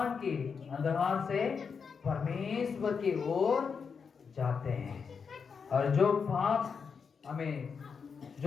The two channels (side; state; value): right; quieter; 5.9 dB